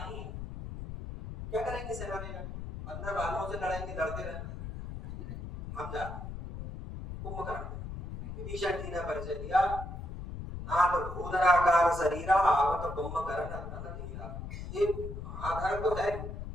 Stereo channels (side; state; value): left; noise; rumble, 8 dB below the sound